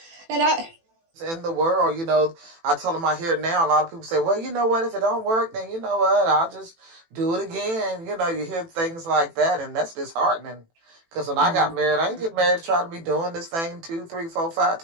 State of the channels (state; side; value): late; left; 18 ms